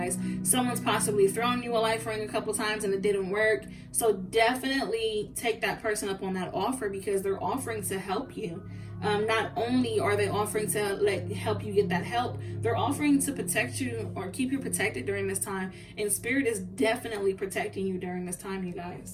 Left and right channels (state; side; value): identical; both; correlation 1.00